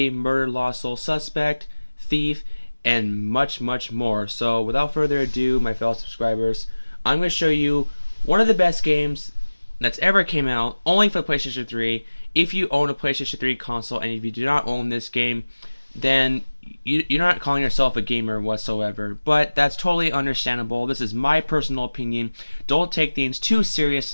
Murder, Lost Soul, Suspect, Thief, and much, much more. So without further ado, my fellow subscribers, I'm going to show you one of the best games that's ever came out, only for PlayStation 3. If you own a PlayStation 3 console, and if you do not own this game, then you're not calling yourself a gamer whatsoever. But that's totally understandable. This is my personal opinion. Don't take things too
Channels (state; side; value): inverted; both; correlation -1.00